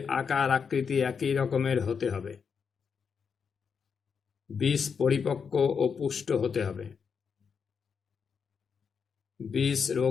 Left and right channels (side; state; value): right; quieter; 6.2 dB